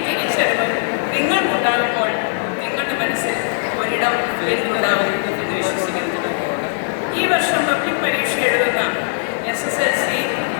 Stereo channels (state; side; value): silent; right; digital silence